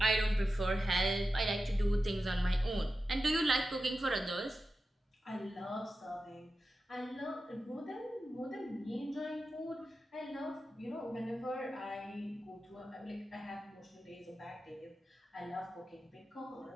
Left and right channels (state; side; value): normal; both; correlation 0.92